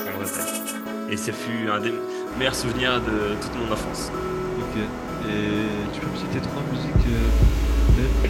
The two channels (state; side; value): identical; both; correlation 1.00